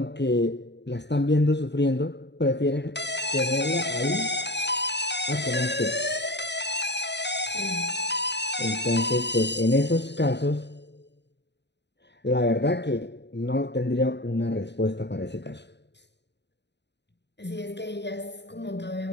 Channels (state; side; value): late; right; 0.50 ms